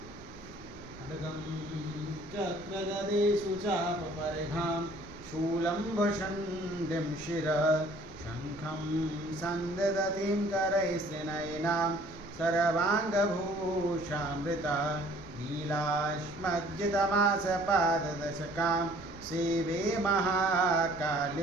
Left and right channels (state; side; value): noise; right; rumble, 20 dB below the sound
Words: खड्गं चक्रगदेषु चापपरिघां शूलं भषण्डिं शिरः शङ्खं सन्ददतिं करैस्त्रिनयनां सर्वाङ्गभूषामृता नीलाश्मज्जितमासपाददशकां सेवे